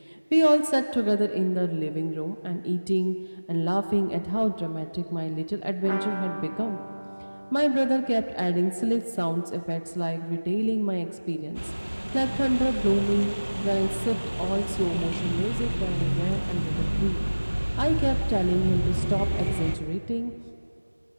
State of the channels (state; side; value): inverted; both; correlation -1.00